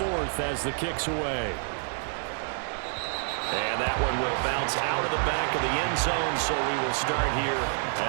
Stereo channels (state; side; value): silent; left; digital silence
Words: as the kick's away. And that one will bounce out of the back of the end zone, so we will start here